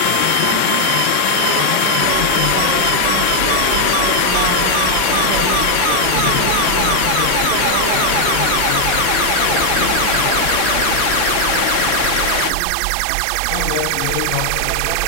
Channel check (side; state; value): both; different; correlation 0.00